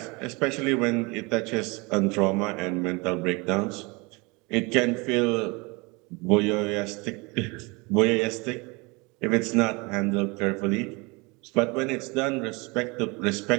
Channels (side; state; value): left; quieter; 27.0 dB